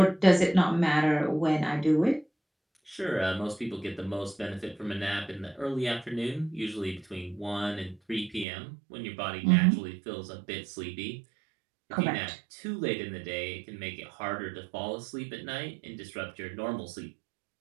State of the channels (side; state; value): left; drops out; at 8.5 s